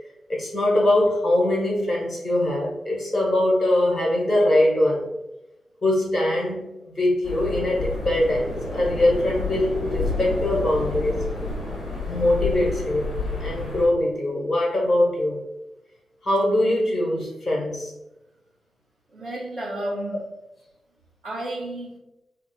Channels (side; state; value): both; normal; correlation 0.88